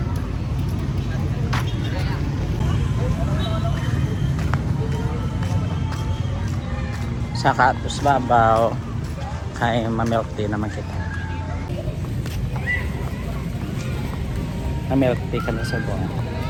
Sa Katus Babaw kay ma-milk tea naman kita. Ma-milk tea kami sa buwan.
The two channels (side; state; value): both; identical; correlation 1.00